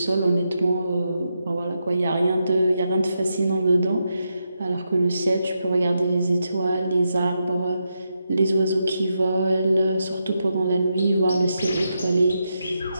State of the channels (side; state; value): both; inverted; correlation -0.84